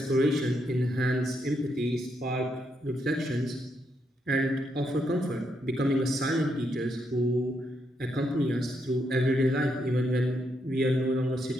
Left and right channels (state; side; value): normal; both; correlation 0.79